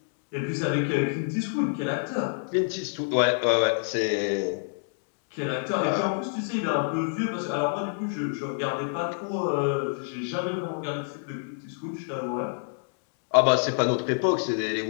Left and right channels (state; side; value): silent; right; digital silence